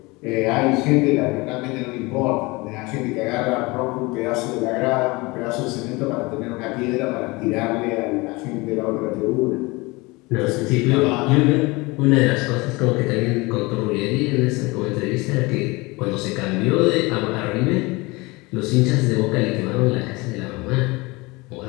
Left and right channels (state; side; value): quieter; right; 24.1 dB